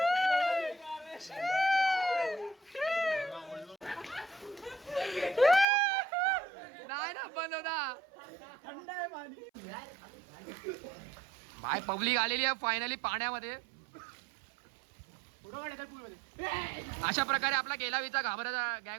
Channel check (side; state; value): left; drops out; at 5.7 s